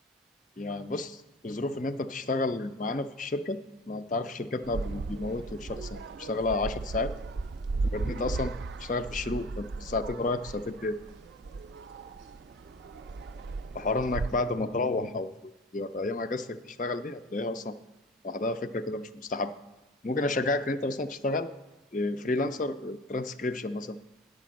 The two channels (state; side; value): normal; both; correlation 0.40